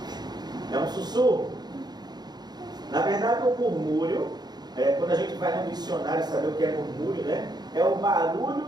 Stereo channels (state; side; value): late; left; 0.20 ms